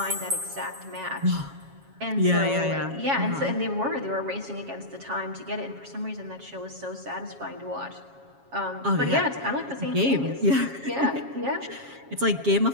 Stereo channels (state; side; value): late; left; 7.3 ms